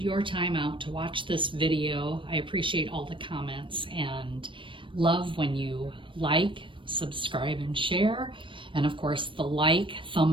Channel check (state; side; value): late; left; 0.25 ms